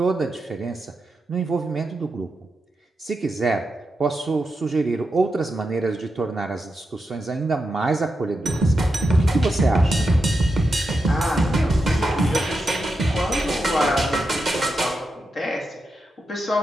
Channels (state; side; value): normal; both; correlation 0.87